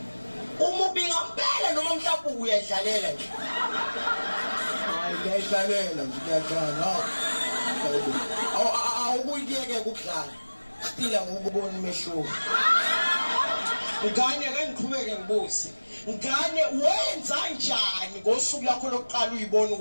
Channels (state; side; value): inverted; both; correlation -1.00